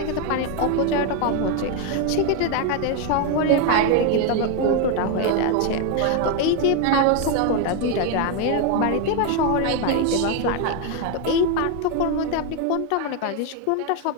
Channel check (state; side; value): different; both; correlation 0.01